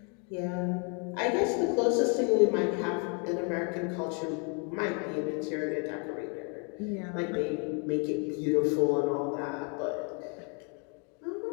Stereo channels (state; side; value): quieter; right; 36.1 dB